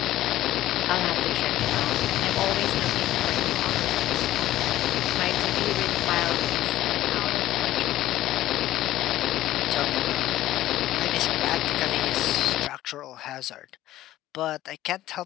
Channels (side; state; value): right; quieter; 14.6 dB